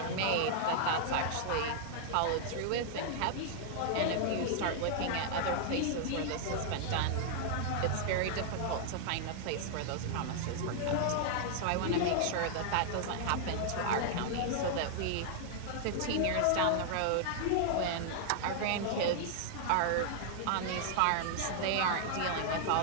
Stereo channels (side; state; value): both; different; correlation -0.01